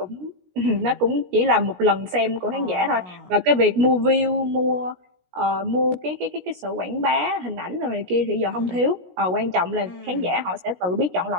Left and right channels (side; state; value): left; late; 17 ms